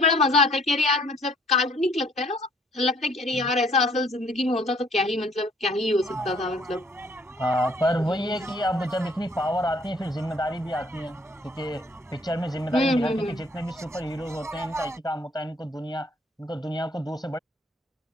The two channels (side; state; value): both; normal; correlation 0.61